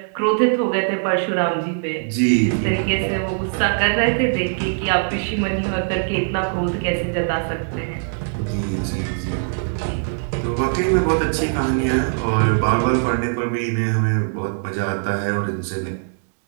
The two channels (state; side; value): silent; left; digital silence